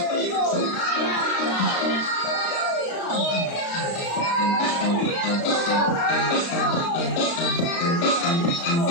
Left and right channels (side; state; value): right; late; 35 ms